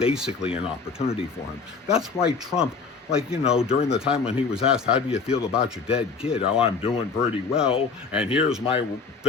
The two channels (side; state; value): right; quieter; 4.9 dB